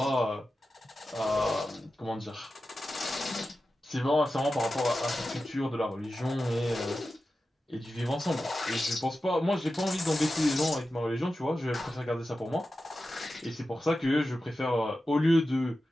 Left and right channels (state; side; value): normal; both; correlation 0.92